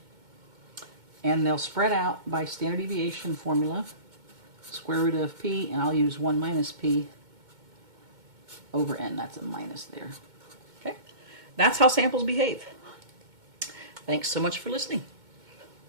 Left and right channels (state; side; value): late; left; 2.2 ms